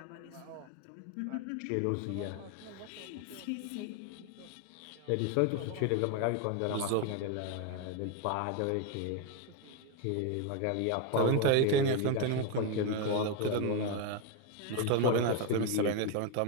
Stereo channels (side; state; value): both; different; correlation 0.01